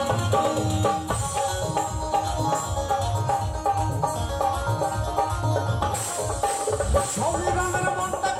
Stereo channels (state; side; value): identical; both; correlation 1.00